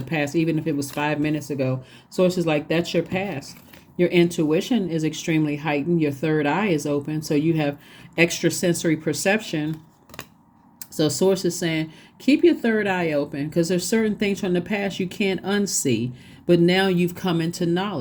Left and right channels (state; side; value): identical; both; correlation 1.00